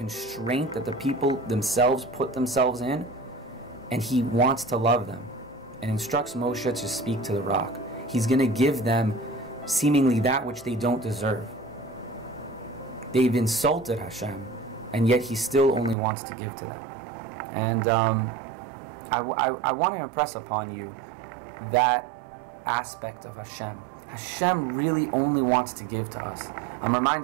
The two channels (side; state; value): left; drops out; at 16.0 s